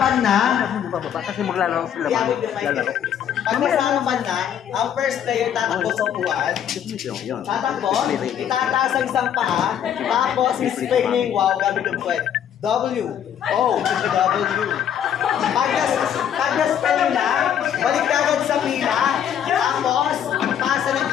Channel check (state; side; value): quieter; right; 9.4 dB